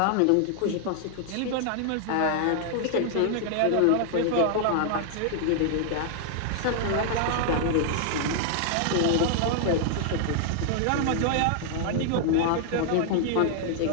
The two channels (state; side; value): different; both; correlation 0.00